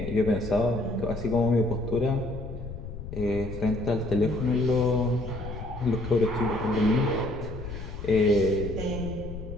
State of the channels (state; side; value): noise; left; rumble, 9 dB below the sound